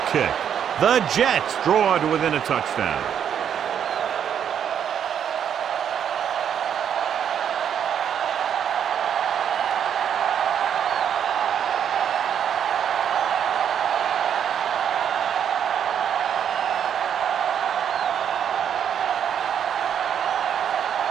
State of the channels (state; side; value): quieter; left; 8.7 dB